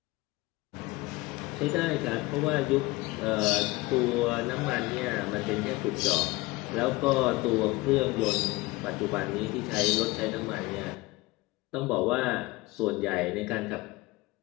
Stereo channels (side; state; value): right; quieter; 21.4 dB